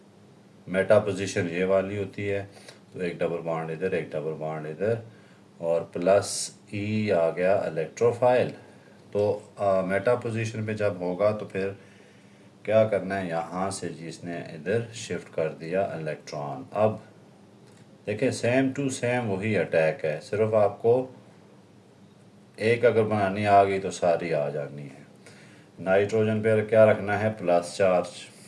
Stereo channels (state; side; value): identical; both; correlation 1.00